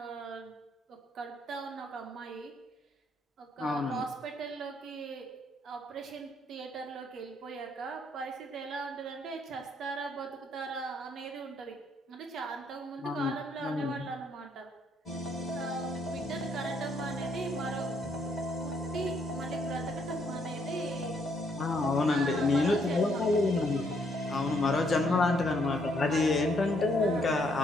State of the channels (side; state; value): both; normal; correlation 0.70